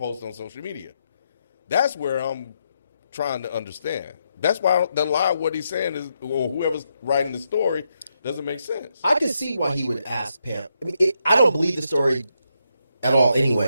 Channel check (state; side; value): inverted; both; correlation -0.81